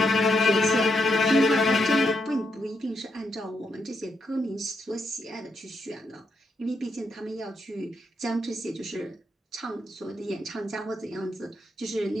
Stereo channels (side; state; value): both; normal; correlation 0.80